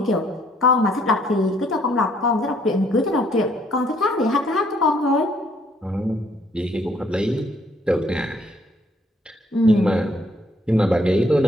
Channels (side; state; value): both; normal; correlation 0.66